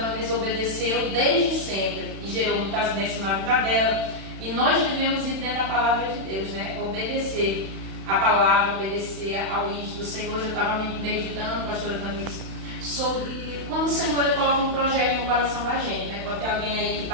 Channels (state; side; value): late; left; 31 ms